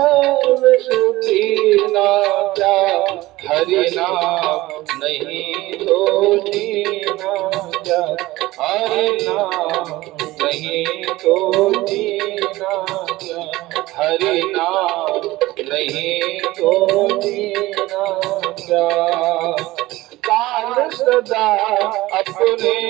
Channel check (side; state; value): left; quieter; 18.4 dB